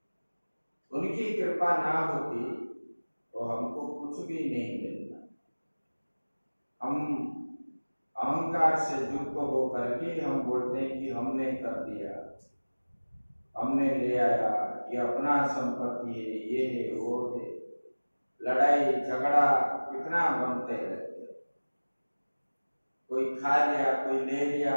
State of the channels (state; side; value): inverted; both; correlation -1.00